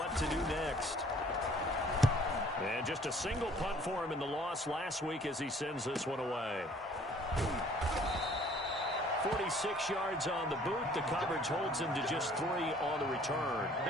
to do next. And just a single punt for him in the loss last week as he sends this one away. 46 yards on the boot. The coverage holds him to just 3 on the return.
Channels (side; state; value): both; normal; correlation 0.56